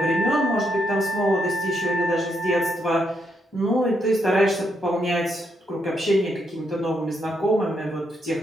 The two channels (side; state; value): both; normal; correlation 0.78